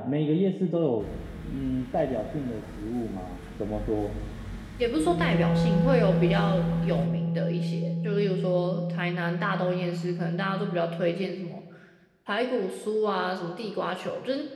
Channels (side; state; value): both; identical; correlation 1.00